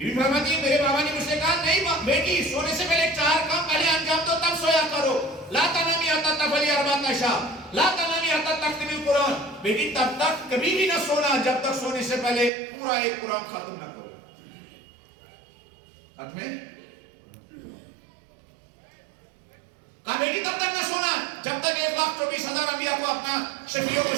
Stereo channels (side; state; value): left; drops out; at 12.5 s